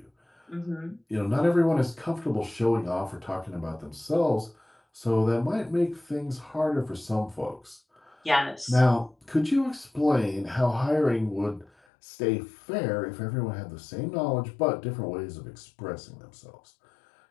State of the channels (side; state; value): right; drops out; at 11.7 s